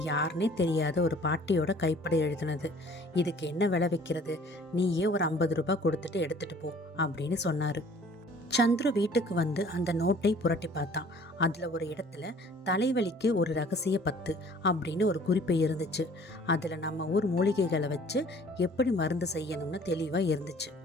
யாருன்னே தெரியாத ஒரு பாட்டியோட கைப்பட எழுதினது. இதுக்கு என்ன விலை வைக்கிறது? நீயே ஒரு 50 ரூபாய் கொடுத்துட்டு எடுத்துட்டு போ அப்படின்னு சொன்னாரு. சந்துரு வீட்டுக்கு வந்து அந்த நோட்டை புரட்டி பார்த்தான். அதுல ஒரு இடத்துல தலைவலிக்கு ஒரு ரகசிய பத்து அப்படின்னு ஒரு குறிப்பு இருந்துச்சு. அதுல நம்ம ஊர் மூலிகைகளை வச்சு எப்படி மருந்து செய்யணும்னு தெளிவா இருந்துச்சு.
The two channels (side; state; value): both; normal; correlation 0.52